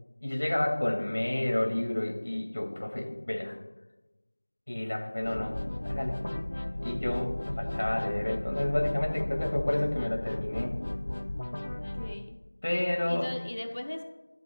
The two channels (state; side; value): inverted; both; correlation -1.00